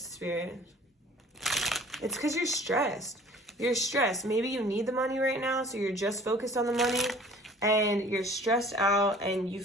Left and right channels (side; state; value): both; normal; correlation 0.49